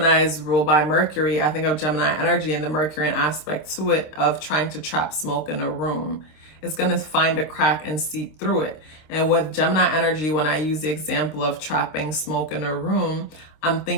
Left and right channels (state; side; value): late; right; 26 ms